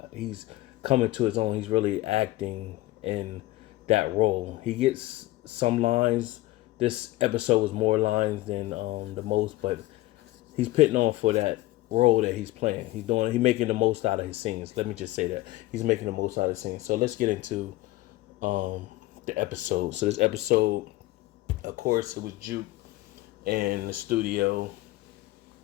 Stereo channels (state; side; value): quieter; right; 18.1 dB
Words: he's coming to his own. He's really acting in that role. He gets some lines. This episode was more lines than the most, but he's putting on for that role that he's playing. He's making the most out of his scenes. Let me just say that. He's making the most out of his scenes. So let's get into the episode. So this episode, of course, it was Juke in the studio,